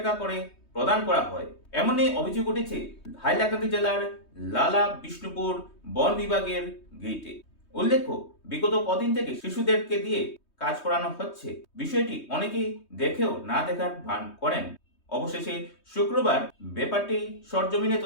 করে প্রদান করা হয়। এমনই অভিযোগ উঠেছে হাইলাকান্দি জেলার লালা বিষ্ণুপুর বন বিভাগের গেইটে। উল্লেখ্য, বিগত কদিন থেকে শিশুদেরকে দিয়ে কাজ করানো হচ্ছে। বিষয়টি অনেকেই দেখেও না দেখার ভান করেন। অবশেষে শুক্রবার ব্যাপারটি সরজমিনে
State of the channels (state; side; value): late; right; 3.2 ms